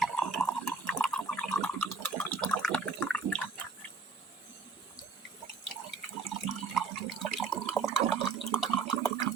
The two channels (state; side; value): quieter; left; 4.3 dB